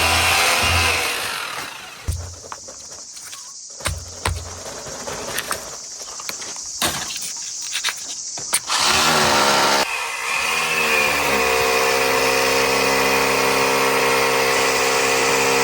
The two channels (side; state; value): both; identical; correlation 1.00